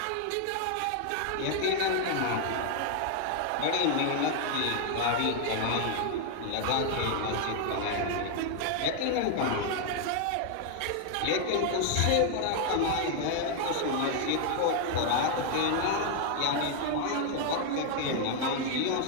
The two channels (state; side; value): different; both; correlation 0.00